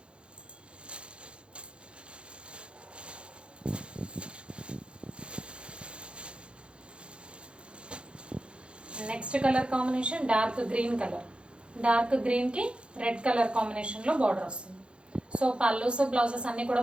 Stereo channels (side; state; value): left; late; 0.056 ms